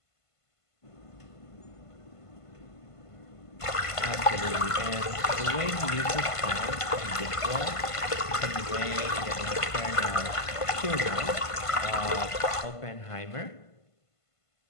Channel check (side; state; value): right; late; 1.5 ms